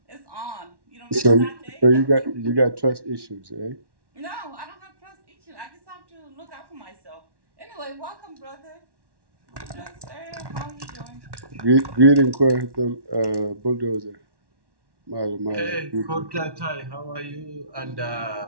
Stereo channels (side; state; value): left; late; 1.1 ms